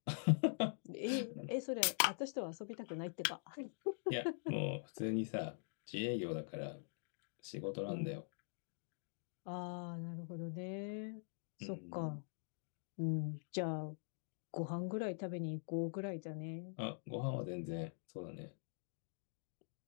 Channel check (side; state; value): right; silent; digital silence